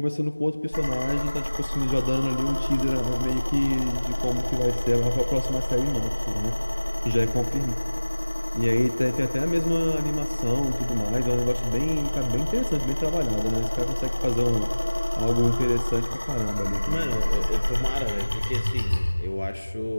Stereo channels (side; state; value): both; inverted; correlation -1.00